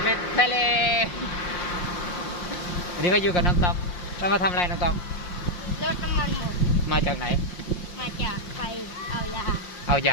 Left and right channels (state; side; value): late; right; 5.6 ms